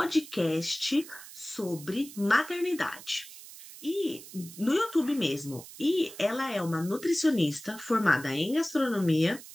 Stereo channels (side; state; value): right; noise; hiss, 16 dB below the sound